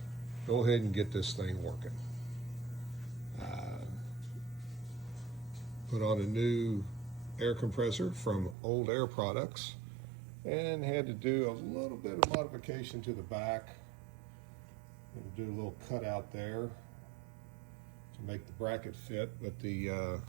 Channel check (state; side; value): drops out; left; at 8.6 s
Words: go ahead and get this thing working. Put on a new air compressor from Old Air Products and had to do a little bit of modification to the back. And do a little cutout there to make the bracket fit, but the